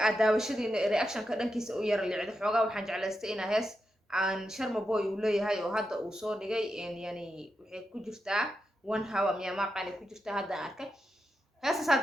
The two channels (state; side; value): normal; both; correlation 0.87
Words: وشدي رياكشن كذا كيس وير اللي عند حوجا وحنج على استئنا هس عن شرم بوي ولا هاي وهذا وصور جاي إن يعني وحي كجرتا وان هوا ميا ما قاني كجرتا هذا أركه هسه